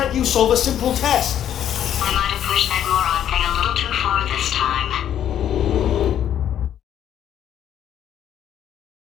you solve a simple test? I might have pushed that moron thing a little too far this time.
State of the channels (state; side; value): quieter; right; 10.3 dB